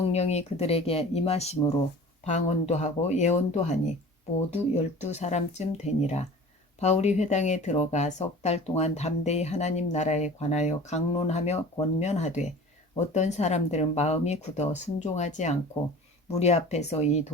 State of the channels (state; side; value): normal; both; correlation 0.41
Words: 그들에게 임하심으로 방언도 하고 예언도 하니 모두 12사람쯤 되니라. 바울이 회당에 들어가 석 달 동안 담대히 하나님 나라에 관하여 강론하며 권면하되 어떤 사람들은 마음이 굳어 순종하지 않고 무리 앞에서 이